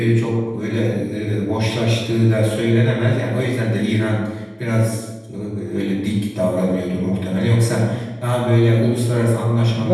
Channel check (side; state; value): both; identical; correlation 1.00